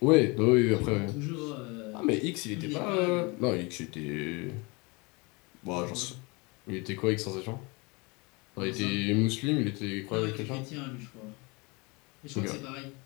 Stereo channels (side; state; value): right; quieter; 27.6 dB